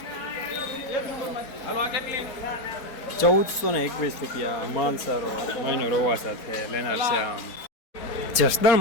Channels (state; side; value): late; right; 4.2 ms